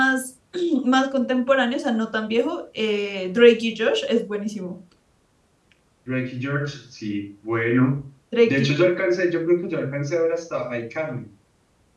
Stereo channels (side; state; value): both; identical; correlation 1.00